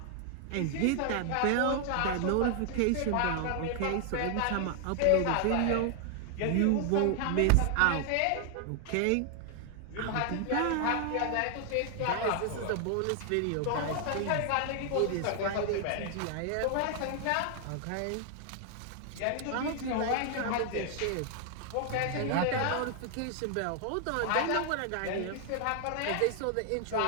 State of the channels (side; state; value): both; different; correlation 0.00